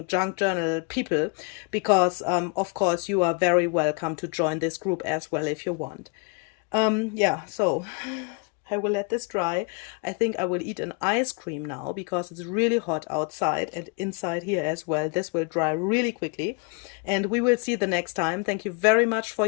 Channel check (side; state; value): right; quieter; 34.0 dB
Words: junk journal people, because, of course, you are very welcome to join this group as well if you want. Yeah, so I will let this dry. I think I will eat an ice cream now because it's really hot outside and inside here as well. This will dry really quickly, and we will see the next time. Thank you very much for